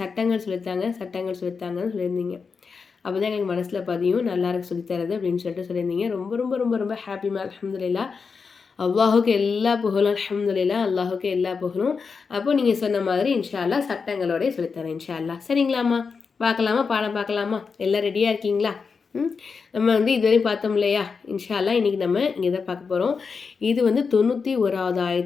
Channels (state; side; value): quieter; right; 5.3 dB